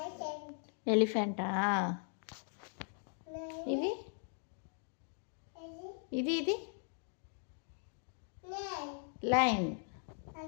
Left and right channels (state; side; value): silent; right; 52 dB below the other